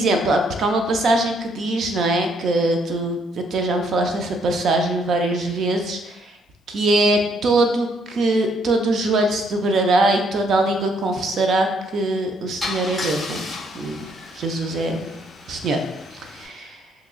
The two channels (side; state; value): both; normal; correlation 0.70